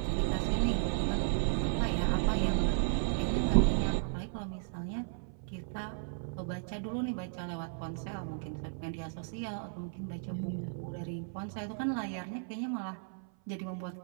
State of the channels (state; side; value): silent; left; 55 dB below the other